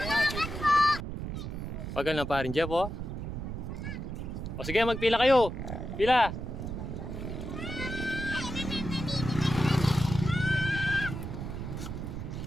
to? Pagal na pa rin, Jeff, oh. O sige, magpila kayo. Pila.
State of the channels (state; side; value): noise; right; rumble, 6 dB below the sound